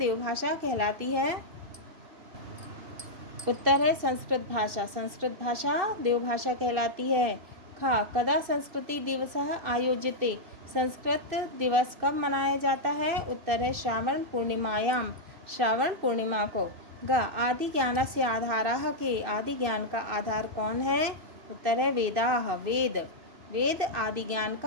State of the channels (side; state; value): left; late; 2.6 ms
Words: कहलाती है? उत्तर है संस्कृत भाषा। संस्कृत भाषा देवभाषा कहलाती है। कदा संस्कृति दिवसः आयोज्यते। संस्कृत दिवस कब मनाया जाता है? उत्तर है श्रावण पूर्णिमायाम, श्रावण पूर्णिमा को। आदि ज्ञानस्य आधारः के। आदि ज्ञान का आधार कौन है? उत्तर है वेदाः, वेद। वेद आदि ज्ञान